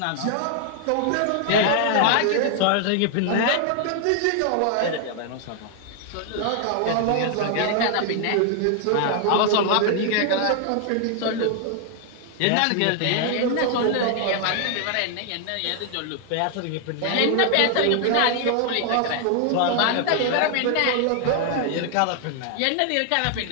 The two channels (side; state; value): both; different; correlation 0.00